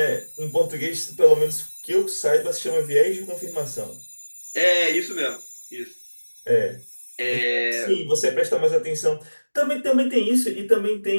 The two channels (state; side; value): inverted; both; correlation -1.00